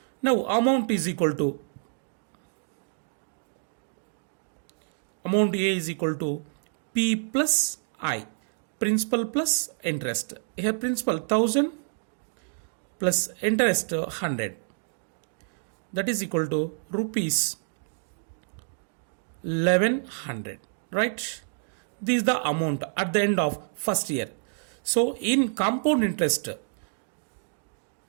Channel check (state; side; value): silent; left; digital silence